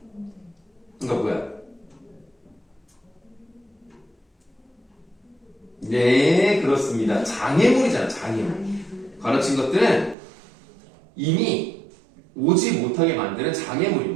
그러니까 뭐야? 네, 그렇습니다. 장애물이잖아, 장애물. 괄호친 것들은 이미 오지 못하게 만드는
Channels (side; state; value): left; drops out; at 10.2 s